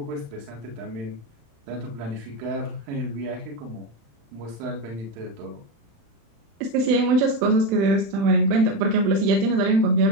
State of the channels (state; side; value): late; left; 35 ms